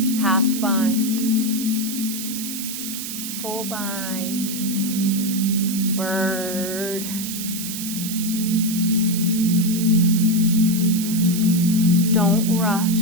Half bind. Full bind. Bird. Don't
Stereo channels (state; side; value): noise; right; hiss, 6 dB below the sound